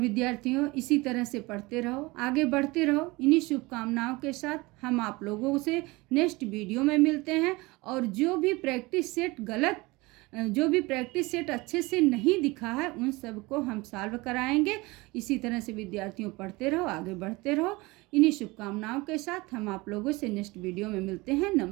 इसी तरह से पढ़ते रहो, आगे बढ़ते रहो। इन्हीं शुभकामनाओं के साथ हम आप लोगों से नेक्स्ट वीडियो में मिलते हैं। और जो भी प्रैक्टिस सेट अच्छे से नहीं दिखा है उन सब को हम सॉल्व कराएंगे। इसी तरह से विद्यार्थियों पढ़ते रहो, आगे बढ़ते रहो। इन्हीं शुभकामनाओं के साथ हम आप लोगों से नेक्स्ट वीडियो में मिलते हैं।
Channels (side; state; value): left; quieter; 23.0 dB